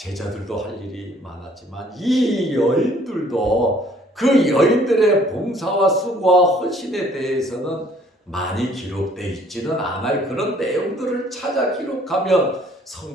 할 일이 많았지만 이 여인들도 그 여인들의 봉사와 수고와 헌신에 대해서는 많이 기록되어 있지는 않아요. 그런 내용들을 찾아 기록하면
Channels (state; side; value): normal; both; correlation 0.59